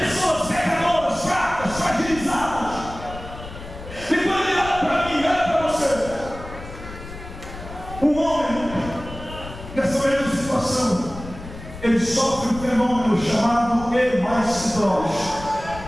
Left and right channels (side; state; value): left; noise; rumble, 13 dB below the sound